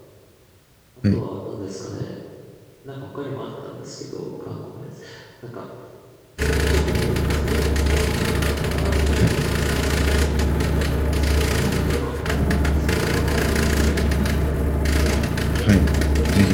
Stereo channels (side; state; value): both; identical; correlation 1.00